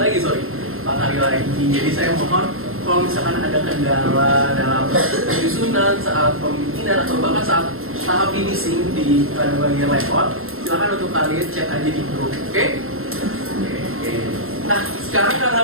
lagi, sorry, 4 hari lagi. Jadi saya mohon kalau misalkan ada kendala dalam penyusunan saat pembikinan atau bahkan saat tahap finishing di bagian layout, silakan untuk kalian chat aja di grup, oke? Oke. Nah, sekarang karena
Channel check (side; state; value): left; late; 0.61 ms